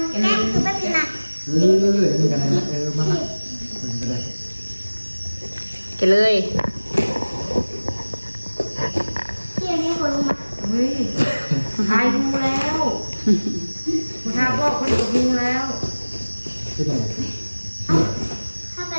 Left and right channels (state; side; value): inverted; both; correlation -1.00